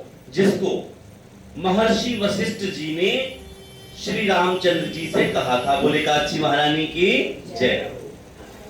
जिसको महर्षि वशिष्ठ जी ने श्री रामचंद्र जी से कहा था। बोले एकादशी महारानी की जय।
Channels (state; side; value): identical; both; correlation 1.00